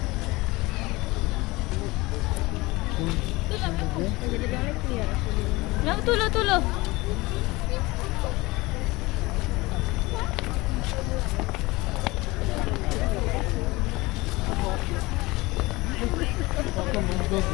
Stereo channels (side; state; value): right; quieter; 21.8 dB